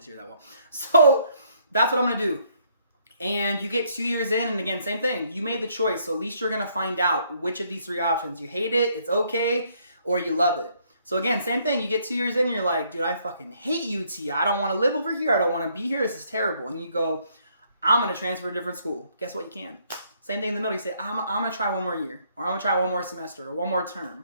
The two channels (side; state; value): both; inverted; correlation -0.68